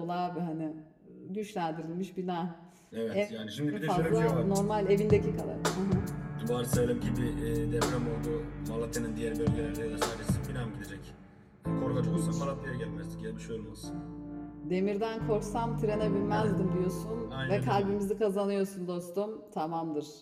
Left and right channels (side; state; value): both; identical; correlation 1.00